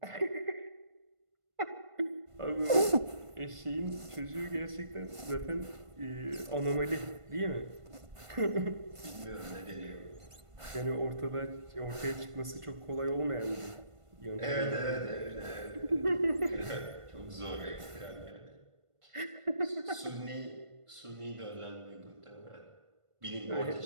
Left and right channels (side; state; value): left; late; 1.5 ms